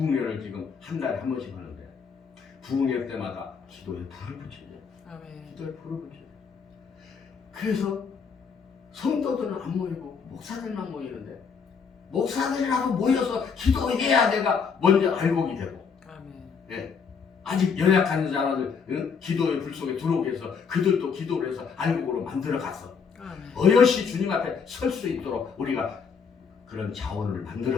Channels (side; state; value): right; quieter; 6.0 dB